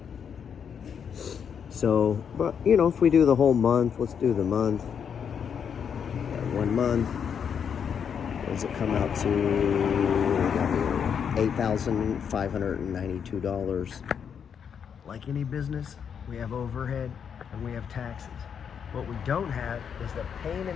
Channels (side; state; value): right; quieter; 7.4 dB